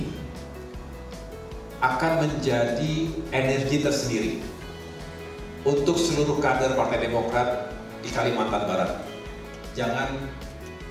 akan menjadi energi tersendiri untuk seluruh kader Partai Demokrat di Kalimantan Barat. Jangan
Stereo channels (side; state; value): both; identical; correlation 1.00